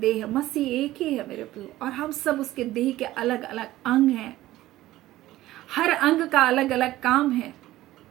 है, मसीह एक ही है मेरे प्रियो, और हम सब उसके देह के अलग अलग अंग हैं। हर अंग का अलग अलग काम है,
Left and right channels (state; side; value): quieter; left; 15.8 dB